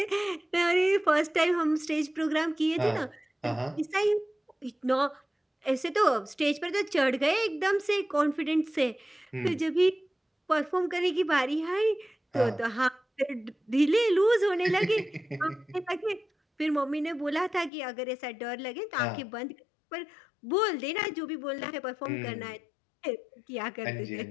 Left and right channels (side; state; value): right; drops out; at 17.7 s